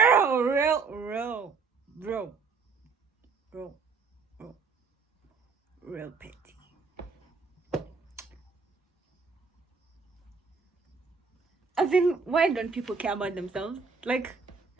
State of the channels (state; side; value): quieter; left; 4.9 dB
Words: petty. I mean, why don't people care about themselves? Like,